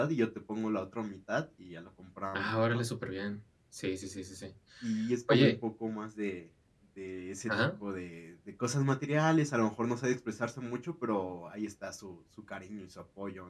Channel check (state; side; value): identical; both; correlation 1.00